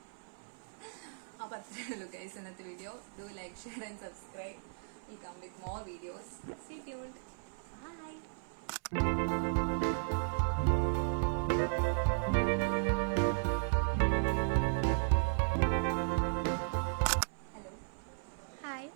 അപ്പോൾ അത്രയേ ഉള്ളൂ guys ഇന്നത്തെ video. Do like, share and subscribe. Will come with more videos. Stay tuned. Bye. Hello. Hi,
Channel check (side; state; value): left; silent; 54 dB below the other